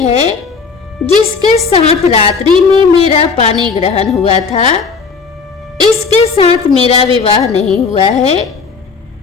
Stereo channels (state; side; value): quieter; right; 5.0 dB